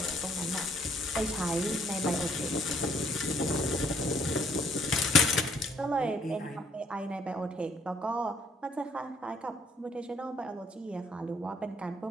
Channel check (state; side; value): normal; both; correlation 0.65